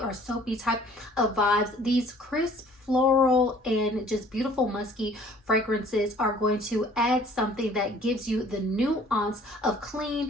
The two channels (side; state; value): both; normal; correlation 0.54